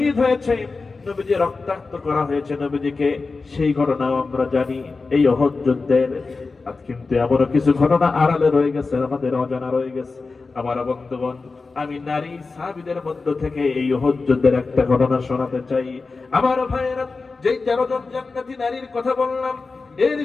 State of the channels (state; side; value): quieter; right; 4.1 dB